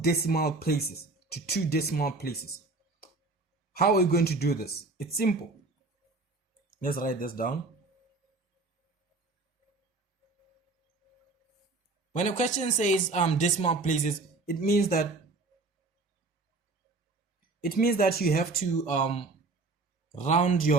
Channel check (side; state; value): left; quieter; 3.5 dB